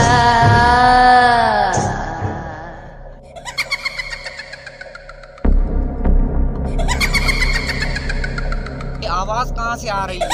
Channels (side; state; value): both; identical; correlation 1.00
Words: आवाज कहाँ से आ रही है?